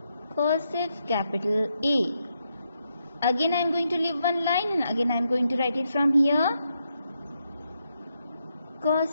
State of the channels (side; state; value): both; inverted; correlation -0.81